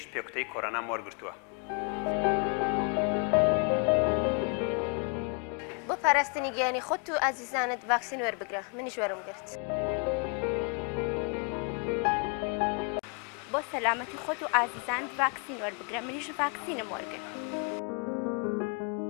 پێکوتەی کۆڕۆنام وەرگرتووە. بۆ پاراستنی گیانی خۆت و ئازیزانت ڤاکسین وەربگرە. منیش وەرم گرت. بۆ سەلامەتی خۆت و ئازیزانت ڤاکسین وەربگرە. منیش ڤاکسینم وەرگرت.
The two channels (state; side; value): quieter; right; 36.4 dB